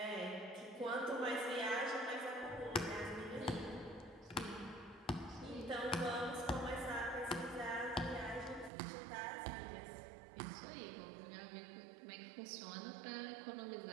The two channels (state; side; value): drops out; left; at 8.7 s